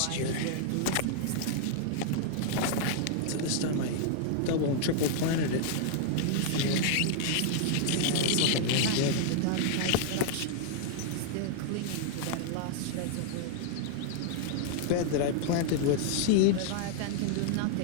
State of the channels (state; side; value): different; both; correlation 0.00